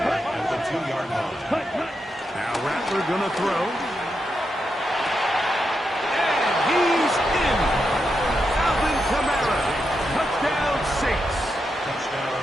at the 2-yard line. Hut, hut. Now Rattler going to throw. And he's in. Alvin Kamara. Touchdown Saints.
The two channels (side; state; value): both; normal; correlation 0.85